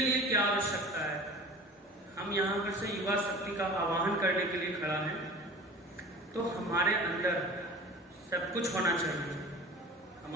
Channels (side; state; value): both; normal; correlation 0.39